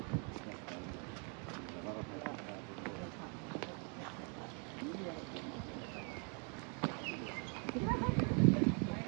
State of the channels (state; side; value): quieter; left; 37.9 dB